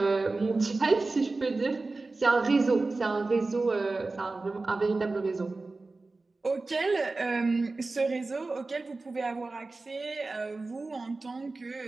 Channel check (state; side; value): quieter; left; 3.5 dB